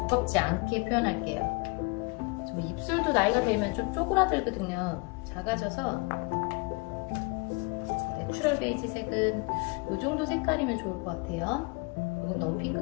않게 표현할게요. 좀 입술도 나이가 들면 좀 쪼그라들거든요. 작아져서 내추럴 베이지색은 이 정도 색깔이면 좋을 것 같아요. 이건 너무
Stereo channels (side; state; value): right; quieter; 28.9 dB